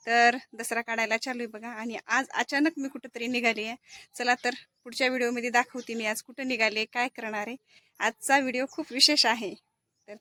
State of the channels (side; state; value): both; identical; correlation 1.00